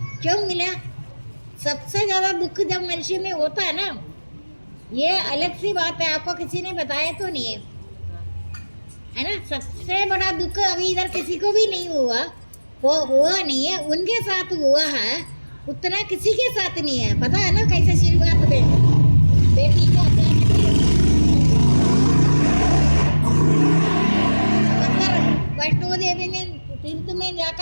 क्यों मिला? सबसे ज़्यादा दुख जब मनुष्य में होता है ना, ये अलग सी बात है, आपको किसी ने बताया तो नहीं है। है ना। सबसे बड़ा दुख अभी इधर किसी को भी नहीं हुआ, वो हुआ नहीं है, उनके साथ हुआ है, उतना किसी के साथ नहीं है। पता है ना कैसे शुरुआत में बेटी को अंदर वैष्णो देवी में तीर्थ में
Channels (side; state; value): both; inverted; correlation -1.00